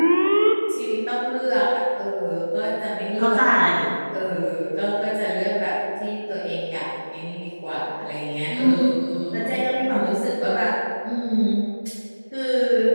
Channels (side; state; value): both; inverted; correlation -1.00